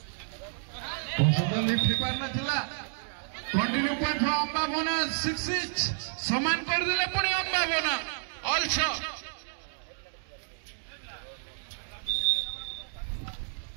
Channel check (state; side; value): silent; left; digital silence